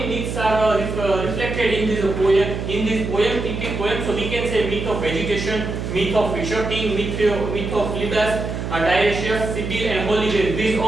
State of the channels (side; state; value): right; noise; hum, 5 dB below the sound